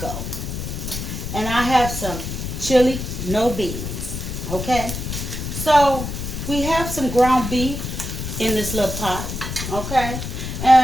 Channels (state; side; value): noise; left; rumble, 5 dB below the sound